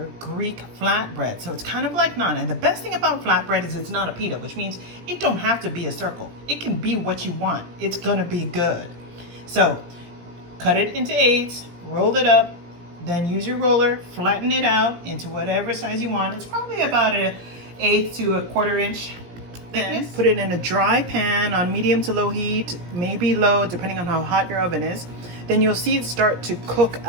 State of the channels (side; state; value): left; late; 17 ms